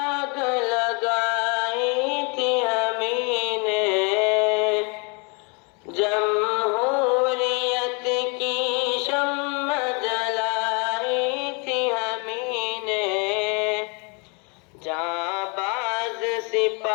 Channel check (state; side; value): quieter; right; 33.3 dB